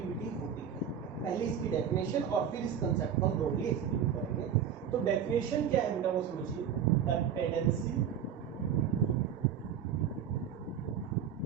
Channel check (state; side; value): quieter; left; 8.4 dB